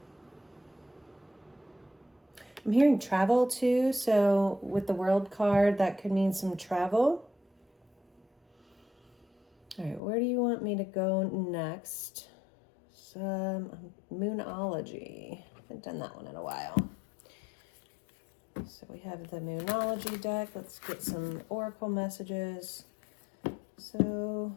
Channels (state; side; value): drops out; right; at 10.0 s